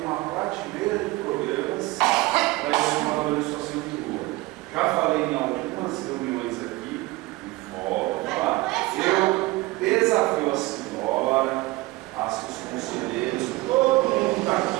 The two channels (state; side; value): quieter; left; 20.7 dB